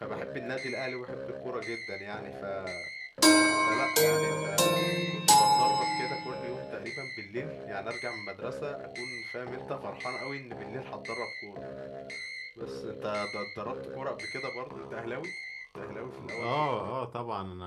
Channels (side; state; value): both; identical; correlation 1.00